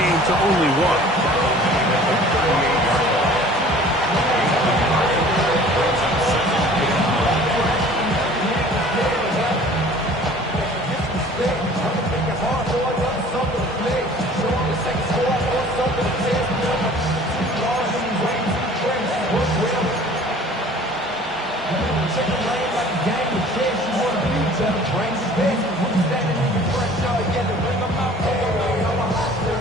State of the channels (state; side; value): normal; both; correlation 0.48